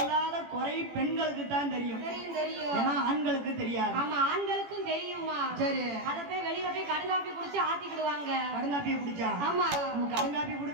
குறை பெண்களுக்கு தான் தெரியும். தெரியும் தெரியும். ஏன்னா ஆண்களுக்கு தெரியாது. ஆமா ஆண்களுக்கும் தெரியுமா. சரி அத போய் வெளியில போய் கடுங்காப்பி குடிச்சு ஆத்திக்கிடுவாங்க. கடுங்காப்பியை குடிச்சா? ஆமா கடுங்காப்பி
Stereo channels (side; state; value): left; late; 18 ms